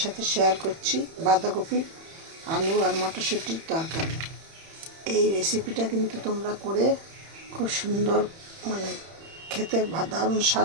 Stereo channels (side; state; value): left; late; 31 ms